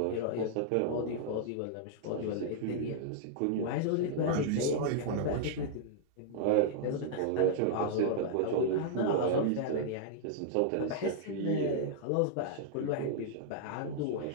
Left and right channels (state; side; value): different; both; correlation -0.01